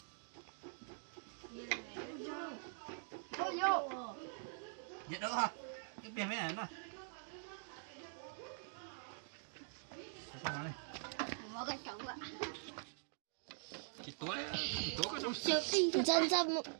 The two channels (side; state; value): left; silent; digital silence